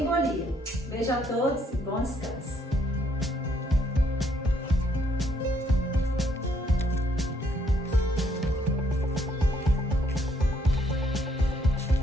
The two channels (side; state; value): both; normal; correlation 0.69